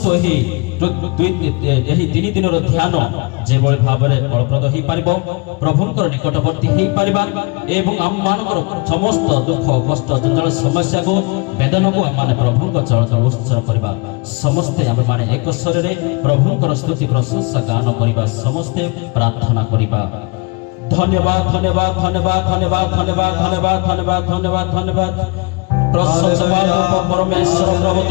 ଏହି 3 ଦିନର ଧ୍ୟାନ ଯେଭଳି ଭାବରେ ଫଳପ୍ରଦ ହେଇପାରିବ, ପ୍ରଭୁଙ୍କର ନିକଟବର୍ତ୍ତୀ ହେଇପାରିବା ଏବଂ ଆମମାନଙ୍କର ସମସ୍ତ ଦୁଃଖ କଷ୍ଟ ଜଞ୍ଜାଳ ସମସ୍ୟାକୁ ବେଦନାକୁ ଆମମାନେ ପ୍ରଭୁଙ୍କ ଚରଣରେ ଉତ୍ସର୍ଗ କରିବା। ସମସ୍ତେ ଆମେମାନେ ଏକ ସ୍ୱରରେ ପ୍ରଭୁଙ୍କର ସ୍ତୁତି ପ୍ରଶଂସା ଗାନ କରିବା, ସମସ୍ତେ ପ୍ରାର୍ଥନା କରିବା। धन्यवाद धन्यवाद धन्यवाद धन्यवाद धन्यवाद धन्यवाद धन्यवाद धन्यवाद धन्यवाद प्रशंसा परमेश्वर प्रभु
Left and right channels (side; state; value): right; quieter; 28.7 dB